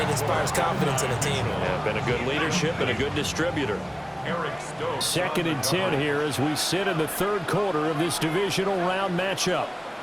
inspires confidence in a team. Yeah, been a good leadership and a good distributor. 2nd and 10 here as we sit in the third quarter of this divisional round matchup.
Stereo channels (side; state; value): both; identical; correlation 1.00